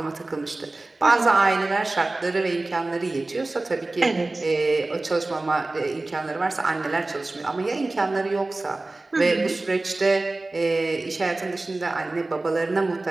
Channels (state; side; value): quieter; left; 3.0 dB